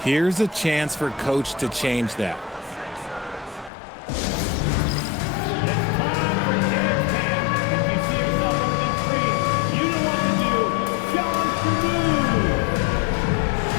Here's a chance for Coach to change that.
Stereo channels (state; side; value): drops out; right; at 3.7 s